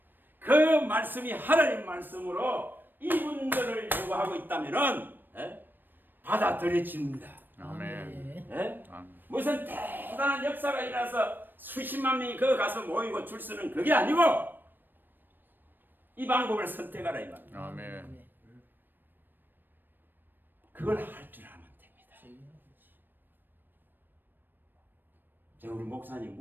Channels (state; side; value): late; left; 0.093 ms